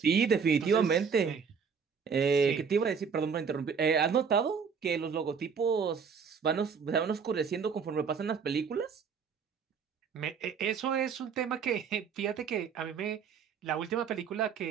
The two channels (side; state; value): left; quieter; 6.2 dB